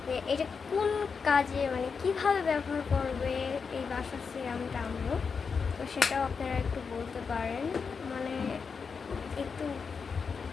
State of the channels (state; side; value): quieter; right; 5.5 dB